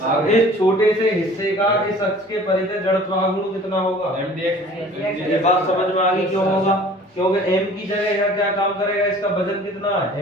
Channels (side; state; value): both; normal; correlation 0.48